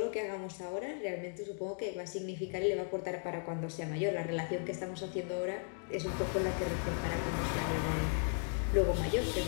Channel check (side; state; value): right; silent; 54 dB below the other